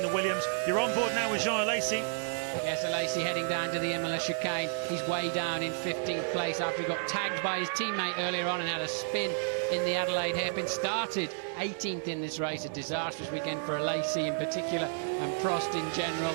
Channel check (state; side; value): silent; left; digital silence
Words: the Williams. You're on board now with Jean Alesi. Yes, Alesi heading down to the Imola chicane. He's way down in 15th place after he got tagged by his teammate earlier on and had a spin in the Adelaide hairpin. Started 18th in this race, a disastrous weekend for Alesi in particular and Prost in general.